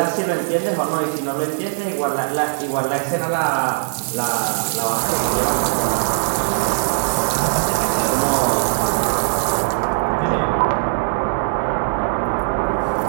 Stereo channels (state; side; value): silent; left; 61 dB below the other